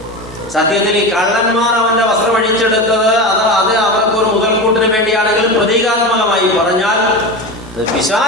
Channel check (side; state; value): both; normal; correlation 0.24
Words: സത്യത്തിൽ ഈ കള്ളന്മാർ അവന്റെ വസ്ത്രം അഴിച്ചെടുത്തത് അത് അവർക്ക് ഒരു മുതൽക്കൂട്ടിന് വേണ്ടിയാണെങ്കിലും പ്രതീകാത്മകമായി പറഞ്ഞാൽ